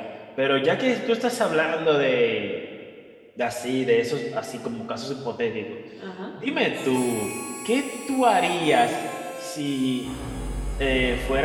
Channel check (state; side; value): identical; both; correlation 1.00